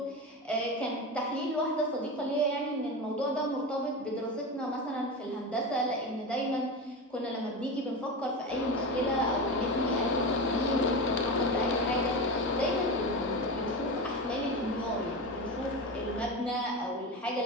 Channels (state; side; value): normal; both; correlation 0.23